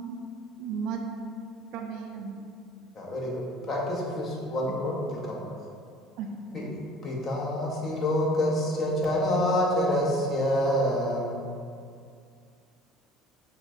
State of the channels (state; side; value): normal; both; correlation 0.49